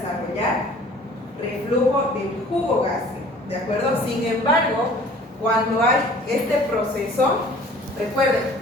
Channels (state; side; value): normal; both; correlation 0.50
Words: reflujo del jugo gástrico, ¿de acuerdo? Sin embargo, cuando hay este proceso, recuerden